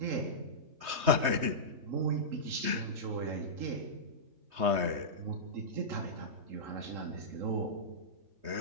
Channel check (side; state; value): left; late; 3.2 ms